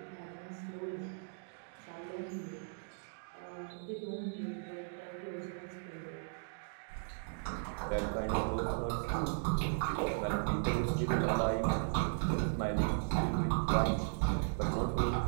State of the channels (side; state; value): left; silent; digital silence